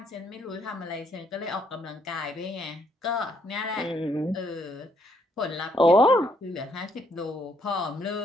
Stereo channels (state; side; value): normal; both; correlation 0.71